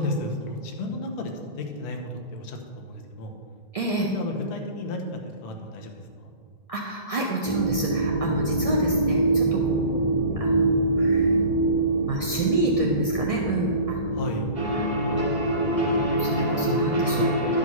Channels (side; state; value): right; late; 1.6 ms